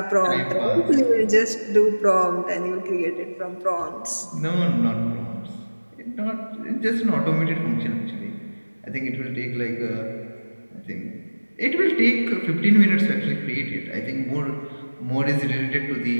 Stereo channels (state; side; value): inverted; both; correlation -1.00